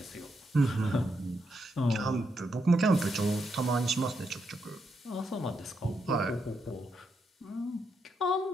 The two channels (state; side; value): normal; both; correlation 0.81